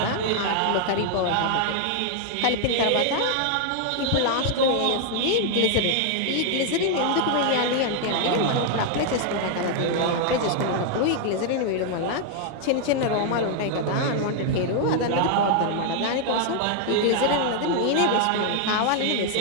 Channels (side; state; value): both; different; correlation 0.00